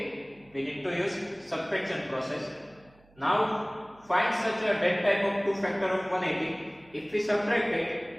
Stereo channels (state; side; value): noise; right; hum, 29 dB below the sound